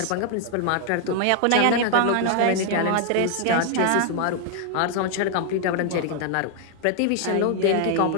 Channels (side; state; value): both; different; correlation 0.00